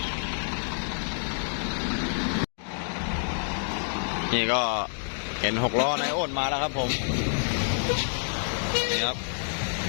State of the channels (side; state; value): right; silent; digital silence